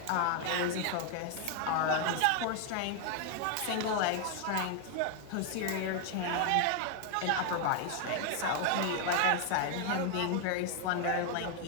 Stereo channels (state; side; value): different; both; correlation 0.00